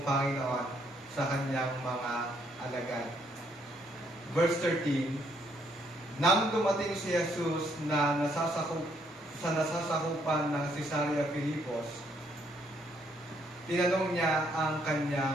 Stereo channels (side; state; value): both; normal; correlation 0.70